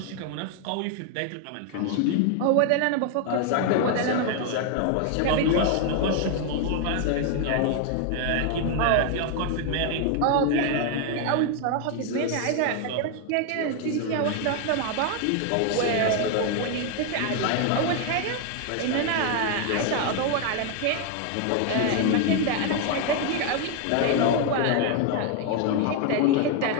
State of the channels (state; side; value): different; both; correlation 0.01